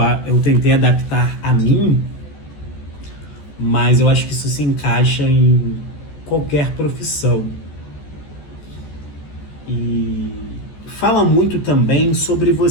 eu tentei adaptar a mim, mas eu acho que isso se encaixa em qualquer profissão. E fala muito também sobre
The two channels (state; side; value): late; right; 14 ms